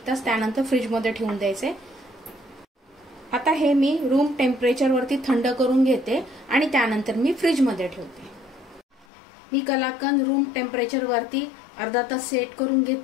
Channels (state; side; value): drops out; right; at 9.1 s